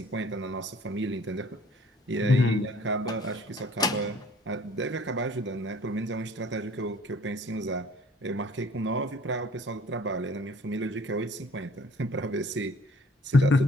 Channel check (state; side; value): normal; both; correlation 0.53